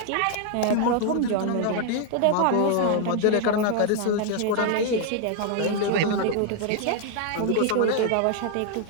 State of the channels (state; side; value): different; both; correlation 0.00